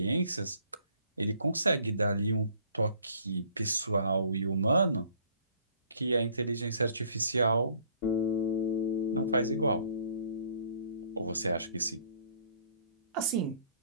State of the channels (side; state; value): both; inverted; correlation -0.60